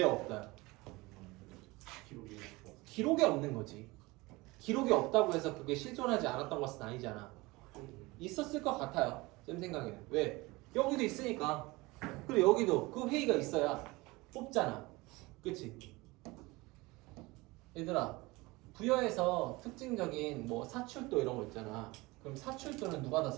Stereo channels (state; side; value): quieter; left; 22.4 dB